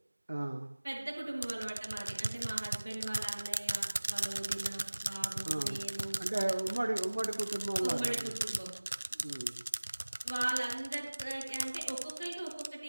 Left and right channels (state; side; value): inverted; both; correlation -1.00